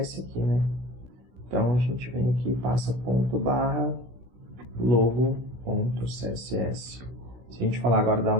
aqui, né? Então a gente vem aqui e passa ponto barra logo.css. Se a gente falar agora, dar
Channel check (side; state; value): left; late; 16 ms